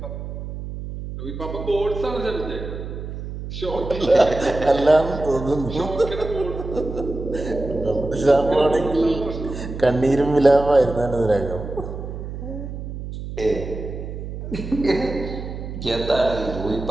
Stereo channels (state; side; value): noise; right; hum, 8 dB below the sound